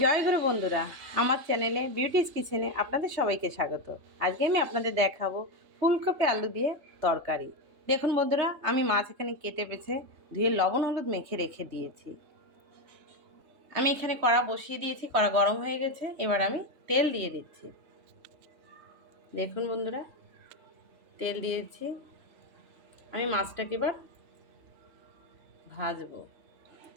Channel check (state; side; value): late; left; 3.2 ms